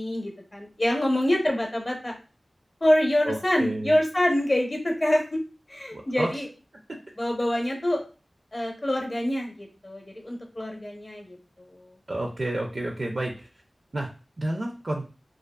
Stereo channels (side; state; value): both; normal; correlation 0.98